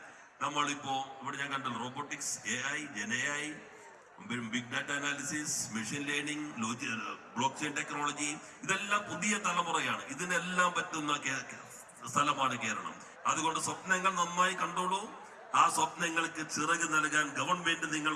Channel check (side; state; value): both; identical; correlation 1.00